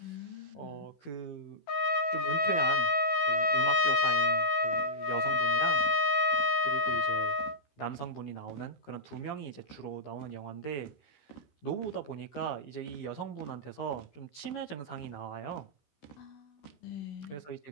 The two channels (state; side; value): late; right; 14 ms